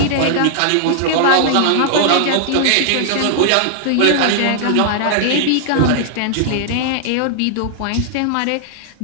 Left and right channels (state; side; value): different; both; correlation -0.01